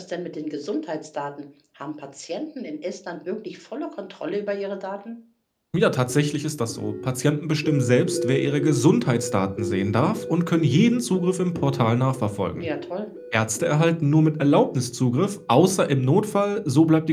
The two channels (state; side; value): identical; both; correlation 1.00